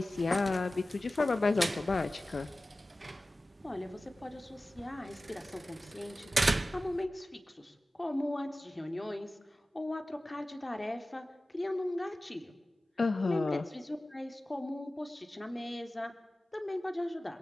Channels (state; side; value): normal; both; correlation 0.96